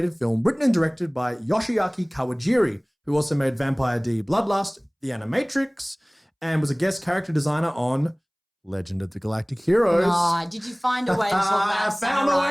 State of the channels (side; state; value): both; identical; correlation 1.00